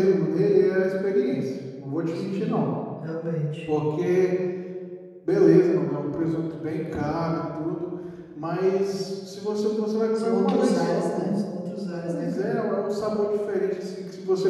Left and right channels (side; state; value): both; identical; correlation 1.00